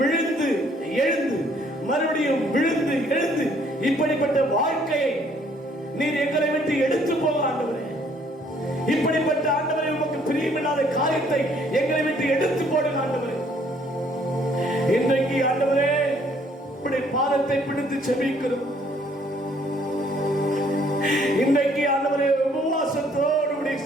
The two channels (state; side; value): normal; both; correlation 0.63